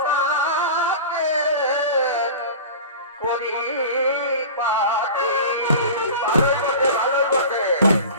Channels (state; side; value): inverted; both; correlation -0.34